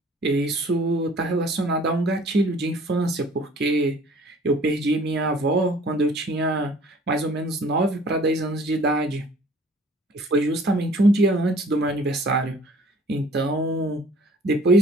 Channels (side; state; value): both; normal; correlation 0.52